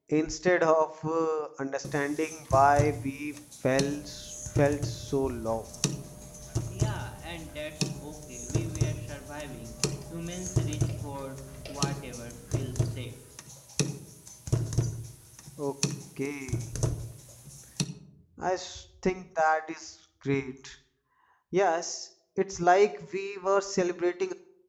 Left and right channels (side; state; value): both; identical; correlation 1.00